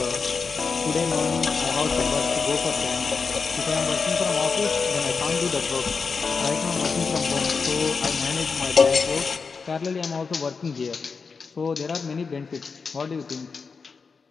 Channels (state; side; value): quieter; right; 5.1 dB